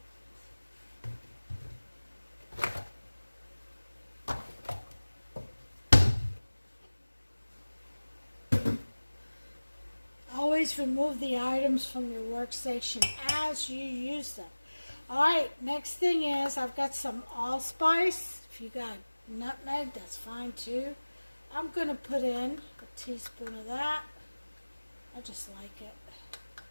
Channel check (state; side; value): inverted; both; correlation -1.00